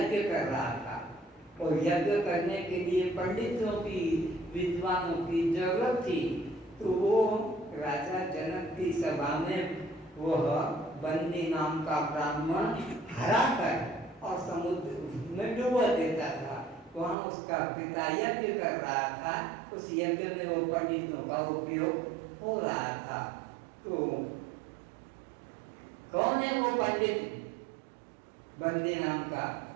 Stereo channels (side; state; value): left; drops out; at 17.2 s